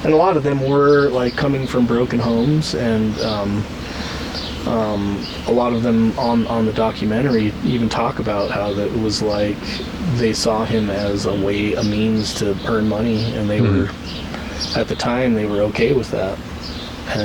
and a lot of them were like coming from broken homes, and a lot of them on the documentary even talk about how that it was like they saw him as a means to earn money, and they were, at the time, they were okay with that.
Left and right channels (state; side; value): identical; both; correlation 1.00